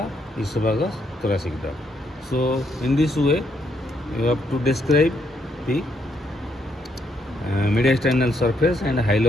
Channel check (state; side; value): normal; both; correlation 0.74